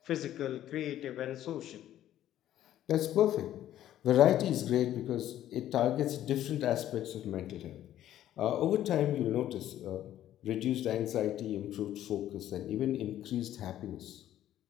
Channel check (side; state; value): right; quieter; 12.3 dB